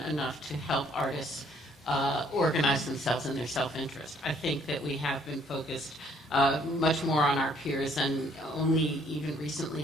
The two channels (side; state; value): both; normal; correlation 0.63